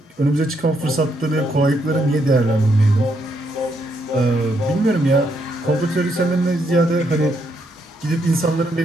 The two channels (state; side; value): normal; both; correlation 0.76